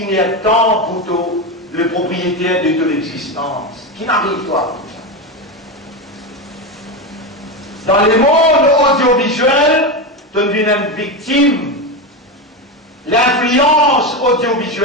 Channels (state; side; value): normal; both; correlation 0.16